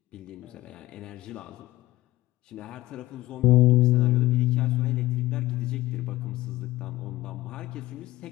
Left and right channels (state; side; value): quieter; right; 17.9 dB